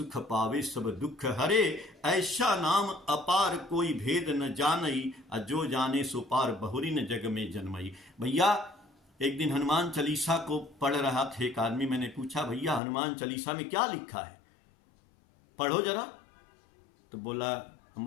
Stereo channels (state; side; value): drops out; right; at 12.8 s